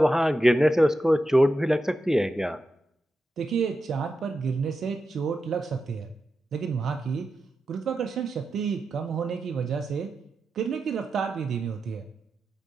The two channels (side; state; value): both; normal; correlation 0.89